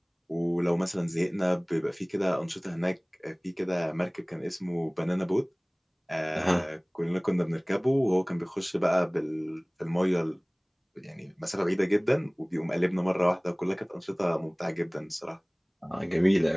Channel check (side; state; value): both; identical; correlation 1.00